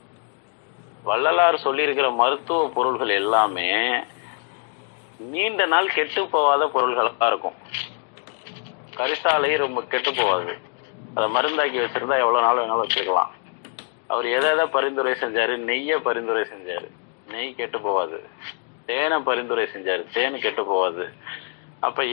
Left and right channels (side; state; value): right; quieter; 39.0 dB